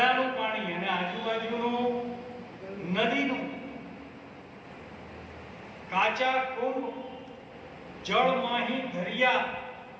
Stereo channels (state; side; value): identical; both; correlation 1.00